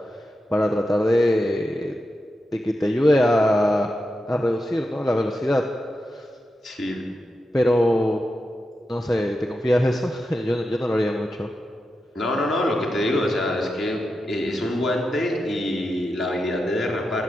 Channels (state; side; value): normal; both; correlation 0.89